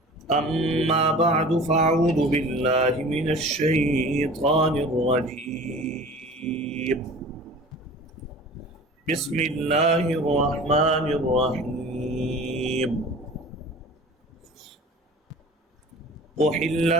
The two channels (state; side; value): normal; both; correlation 0.41